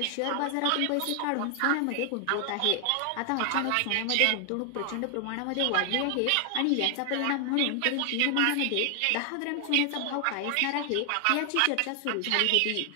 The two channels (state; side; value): different; both; correlation 0.00